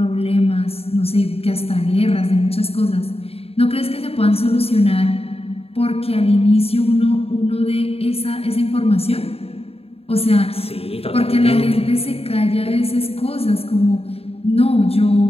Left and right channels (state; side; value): late; right; 0.28 ms